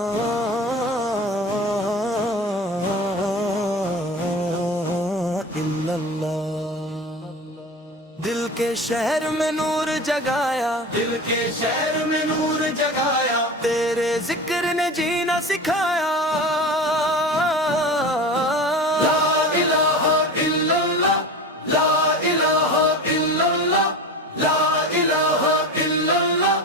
दिल के शहर में नूर जगाया, दिल के शहर में नूर जगाया, तेरे जिक्र ने जीना सिखाया। ला इलाहा इल्लल्लाह, ला इलाहा इल्लल्लाह, ला इलाहा इल्लल्लाह।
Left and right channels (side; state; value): both; normal; correlation 0.31